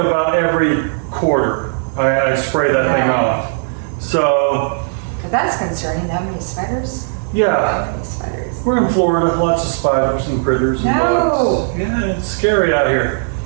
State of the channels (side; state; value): left; silent; 60 dB below the other